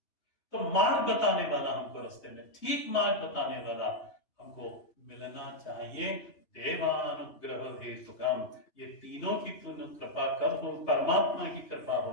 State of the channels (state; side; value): late; right; 3.1 ms